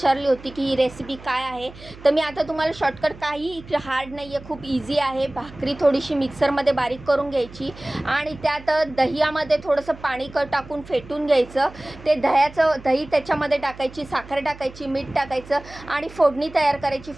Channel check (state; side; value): noise; right; hum, 18 dB below the sound